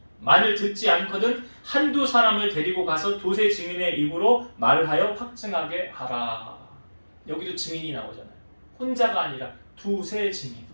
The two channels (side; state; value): both; inverted; correlation -1.00